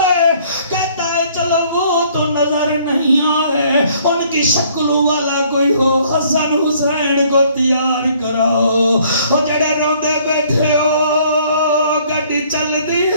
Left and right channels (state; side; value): inverted; both; correlation -0.60